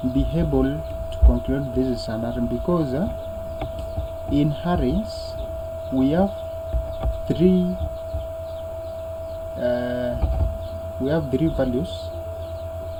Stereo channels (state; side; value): identical; both; correlation 1.00